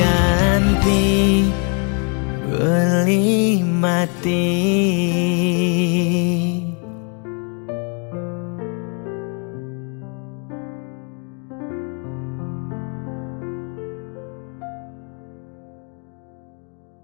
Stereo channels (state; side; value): quieter; right; 38.9 dB